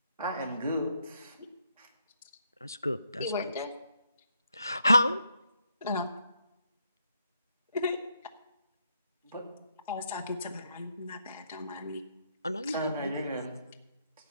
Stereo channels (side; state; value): both; inverted; correlation -0.77